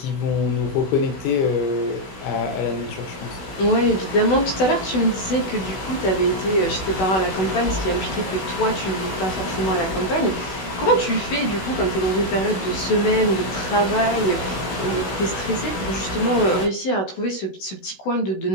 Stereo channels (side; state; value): right; late; 16 ms